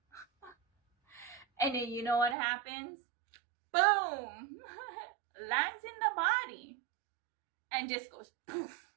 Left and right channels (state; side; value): drops out; left; at 2.4 s